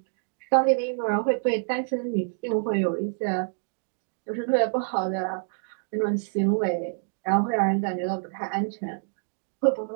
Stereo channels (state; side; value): silent; left; digital silence